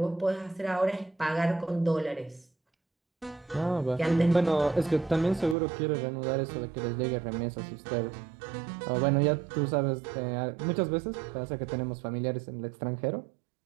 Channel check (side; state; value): left; drops out; at 5.6 s